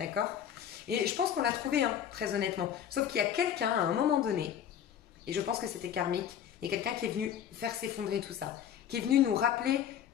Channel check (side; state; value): right; quieter; 9.4 dB